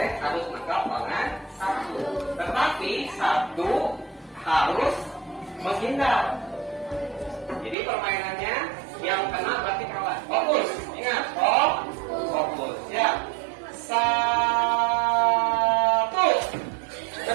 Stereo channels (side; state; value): left; drops out; at 7.8 s